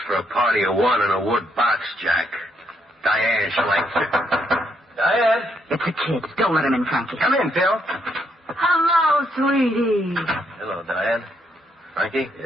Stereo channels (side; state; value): both; normal; correlation 0.75